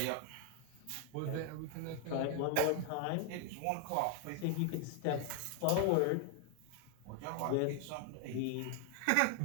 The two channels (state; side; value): different; both; correlation 0.00